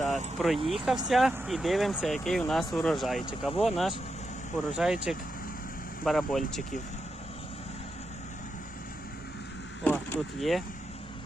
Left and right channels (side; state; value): both; normal; correlation 0.86